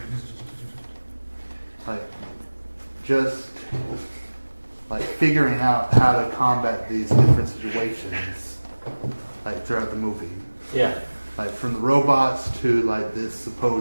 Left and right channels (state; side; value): inverted; both; correlation -1.00